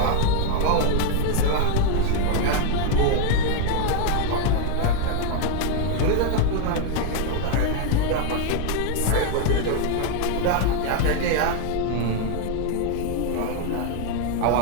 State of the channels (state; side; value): different; both; correlation 0.01